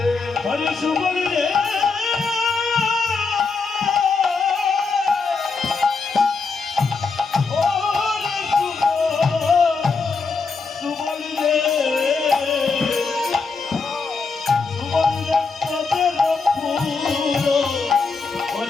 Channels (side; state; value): right; quieter; 4.6 dB